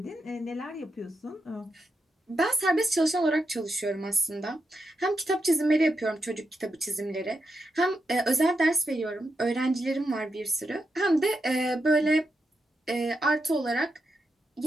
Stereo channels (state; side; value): normal; both; correlation 0.86